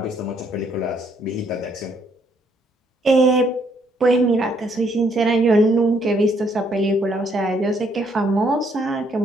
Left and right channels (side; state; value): both; normal; correlation 0.69